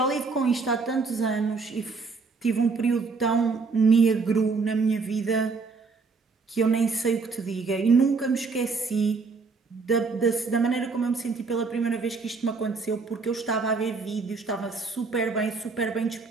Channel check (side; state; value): left; quieter; 4.4 dB